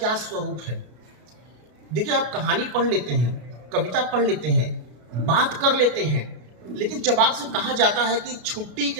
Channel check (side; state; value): left; late; 33 ms